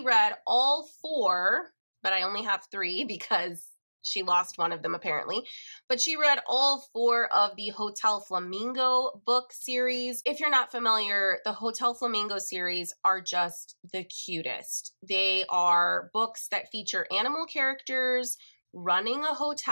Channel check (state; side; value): inverted; both; correlation -1.00